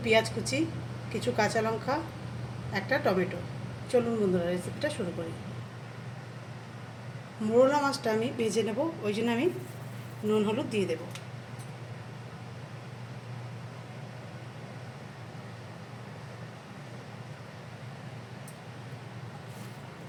পেঁয়াজ কুচি, কিছু কাঁচা লঙ্কা, একটা টমেটো। চলুন বন্ধুরা, রেসিপিটা শুরু করি। মোরলা মাছটা আমি ভেজে নেব, ওই জন্য আমি নুন হলুদ দিয়ে দেবো।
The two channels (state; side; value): identical; both; correlation 1.00